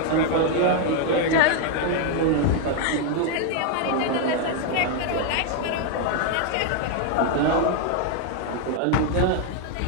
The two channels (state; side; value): different; both; correlation 0.00